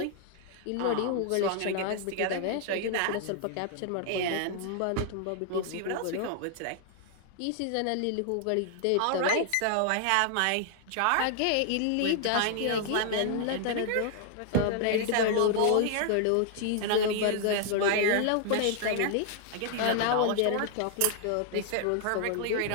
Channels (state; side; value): different; both; correlation 0.00